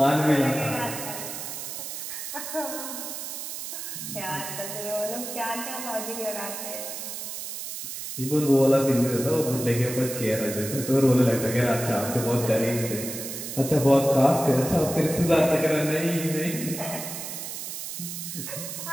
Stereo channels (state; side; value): noise; right; hiss, 7 dB below the sound